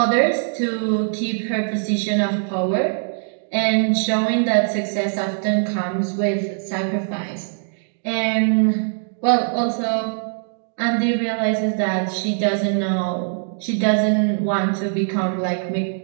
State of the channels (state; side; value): silent; left; digital silence